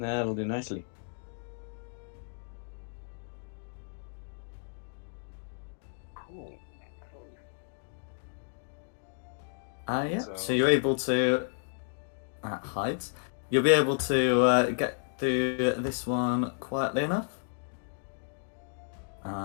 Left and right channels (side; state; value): right; silent; digital silence